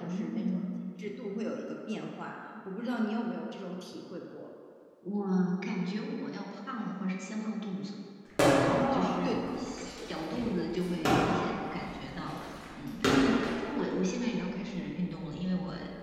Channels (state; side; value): identical; both; correlation 1.00